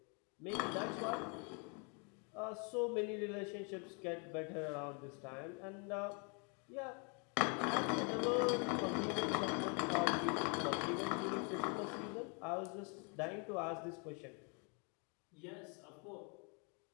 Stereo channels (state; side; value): quieter; right; 35.5 dB